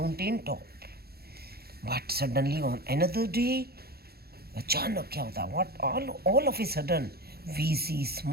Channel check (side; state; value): left; late; 0.46 ms